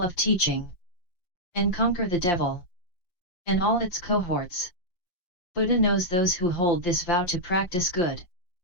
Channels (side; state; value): right; late; 5.7 ms